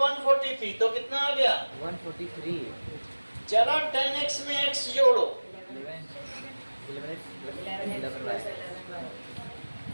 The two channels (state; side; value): inverted; both; correlation -1.00